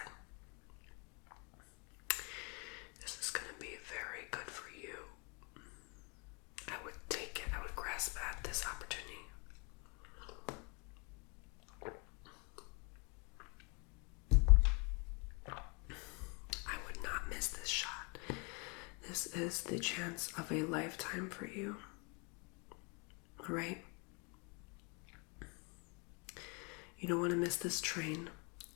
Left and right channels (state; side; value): quieter; right; 33.1 dB